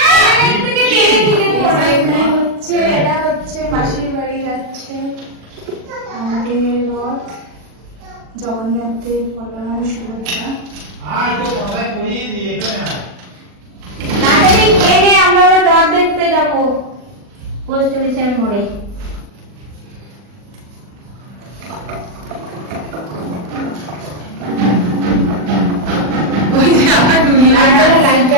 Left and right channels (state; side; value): late; left; 40 ms